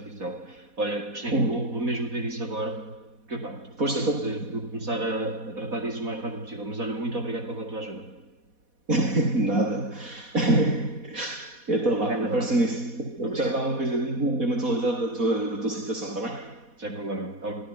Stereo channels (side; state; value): left; late; 4.1 ms